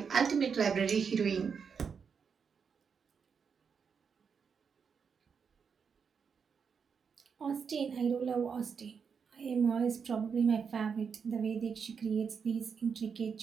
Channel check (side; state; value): left; quieter; 6.2 dB